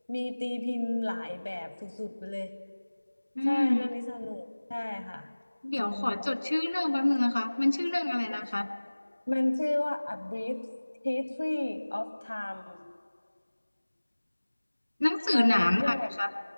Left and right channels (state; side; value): inverted; both; correlation -1.00